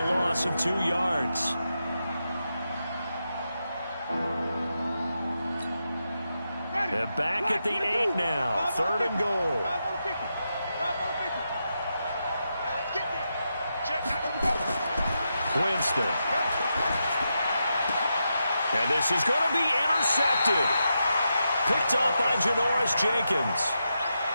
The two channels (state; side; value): inverted; both; correlation -0.86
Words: loss of 2 yards. They're back at the 8 now. 3rd and goal. Winston. And this is going to be intercepted. Picked up by Janoris Jenkins.